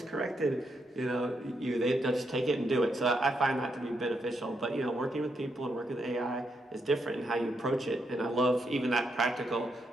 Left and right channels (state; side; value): normal; both; correlation 0.80